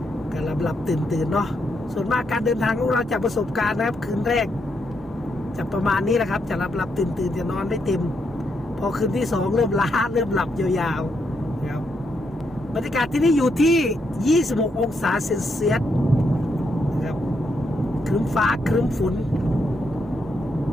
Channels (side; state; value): both; normal; correlation 0.79